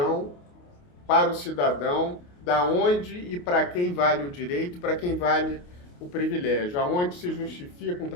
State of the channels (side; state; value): right; late; 28 ms